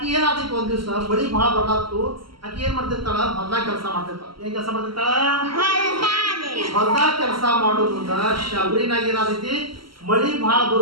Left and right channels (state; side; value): late; left; 0.74 ms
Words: ಏನಾಗ್ತೈತಿ, ಒಂದ್ ದಿವ್ಸ ಮಳಿ ಭಾಳ ಬರ್ಲಾತು. ಆಕಿ ಏನ್ ಮಾಡ್ತಿರ್ತಾಳ, ಹೊಲ್ದಾಗ ಕೆಲಸ ಮಾಡ್ತಿರ್ತಾಳ. ಏನ್ ಕೆಲಸ ಮಾಡ್ತಿರ್ತಾಳ, ಹೊಲ್ದಾಗ ಕೆಲಸ ಮಾಡೋದ್ರಿಂದ ಶಾಬ್ರಿನಾಗ ಏನಾಗ್ತೈತಿ, ಮಳಿ ಭಾಳ